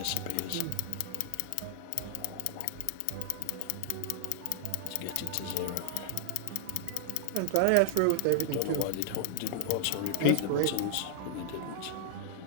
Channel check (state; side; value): different; both; correlation 0.00